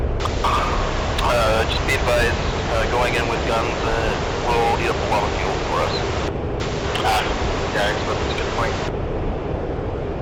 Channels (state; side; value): identical; both; correlation 1.00